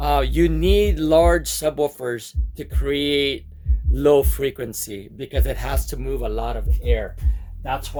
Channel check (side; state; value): both; identical; correlation 1.00